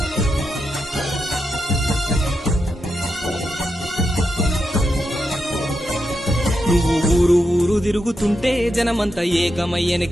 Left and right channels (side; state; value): both; normal; correlation 0.85